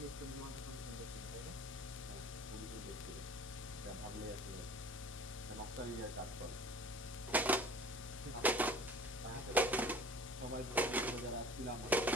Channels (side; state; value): both; normal; correlation 0.46